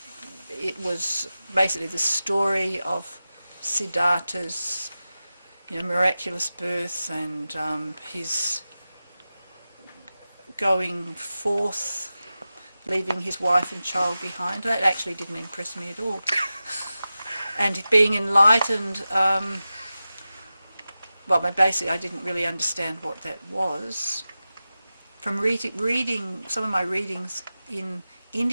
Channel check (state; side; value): inverted; both; correlation -0.94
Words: it was basically the story of Siddhartha's, miraculous birth and his going forth, leaving his wife and child behind. That actually didn't impress me at all. And being enlightened, basically I didn't really understand what that was. From reading some of my readings in